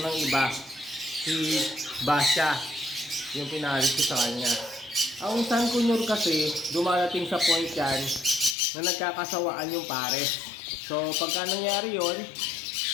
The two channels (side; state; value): right; drops out; at 8.6 s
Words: iba. Si Basha, yung pinaris ko sa kanya. Ang San Cunyor kasi, dumarating sa point yan na nagkakasawaan yung pares. So, pagka nangyari yon,